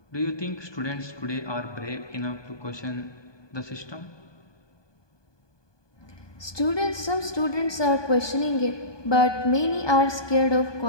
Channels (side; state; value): right; late; 1.2 ms